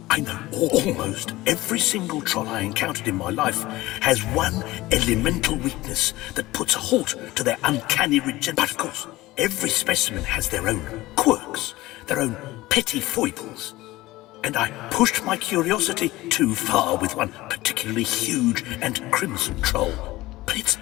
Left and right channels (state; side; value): quieter; right; 18.4 dB